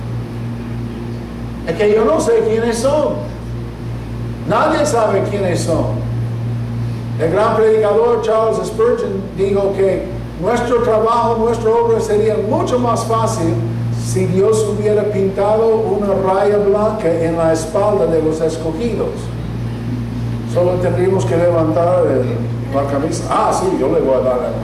Es que yo no sé quiénes son. Nadie sabe quiénes son. El gran predicador Charles Spurgeon dijo que nuestro trabajo, nuestra obra sería mucho más fácil si Dios hubiera pintado una raya blanca en la espalda de los escogidos. Solo tendríamos que levantar la camisa. Ah, sí, yo le voy a dar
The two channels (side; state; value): both; identical; correlation 1.00